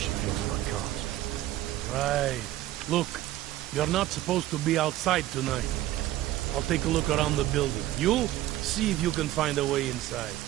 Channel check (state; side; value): quieter; left; 14.6 dB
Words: feels about cops. Right. Look, you're not supposed to be outside tonight. I'll take a look around the building. You? See if you can find a way inside.